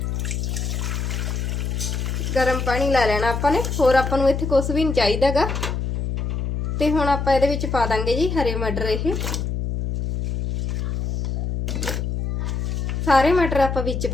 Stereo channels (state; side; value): noise; left; hum, 2 dB below the sound